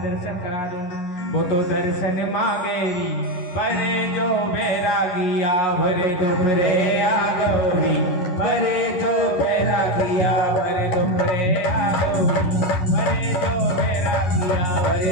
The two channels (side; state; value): right; late; 11 ms